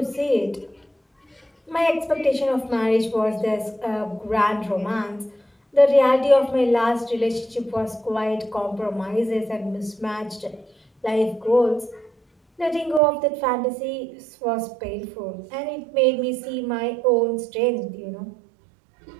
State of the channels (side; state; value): left; drops out; at 13.0 s